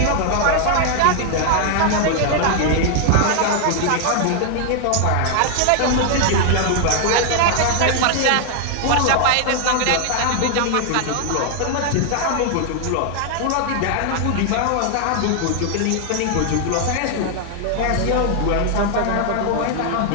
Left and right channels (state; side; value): different; both; correlation 0.00